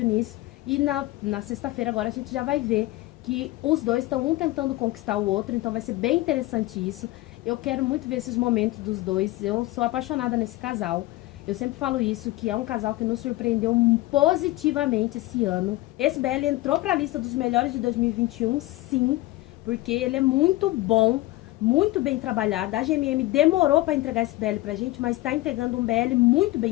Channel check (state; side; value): quieter; right; 18.5 dB